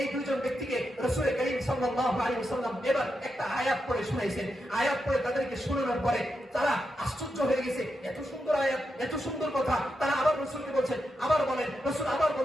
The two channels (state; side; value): normal; both; correlation 0.86